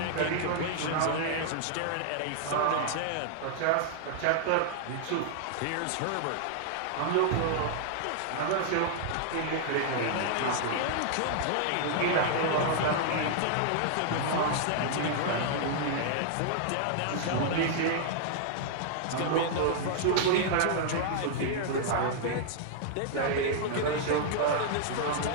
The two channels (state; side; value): different; both; correlation -0.01